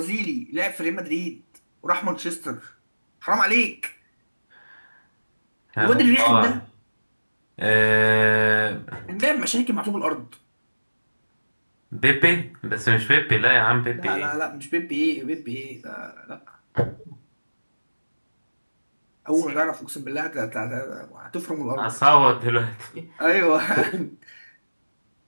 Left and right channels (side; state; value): both; inverted; correlation -1.00